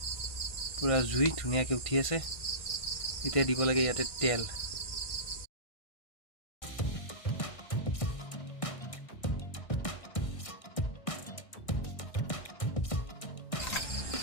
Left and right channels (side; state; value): right; late; 1.6 ms